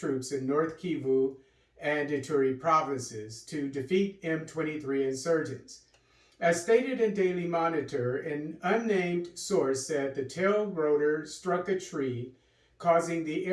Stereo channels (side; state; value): both; identical; correlation 1.00